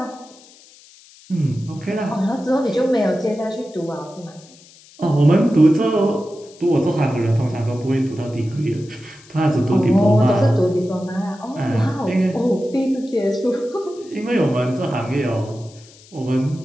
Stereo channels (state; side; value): noise; left; hiss, 24 dB below the sound